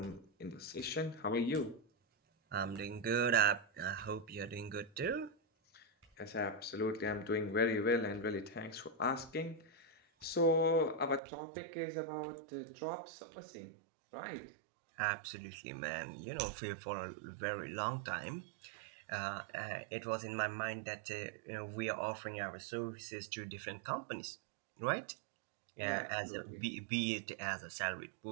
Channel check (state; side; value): drops out; left; at 11.2 s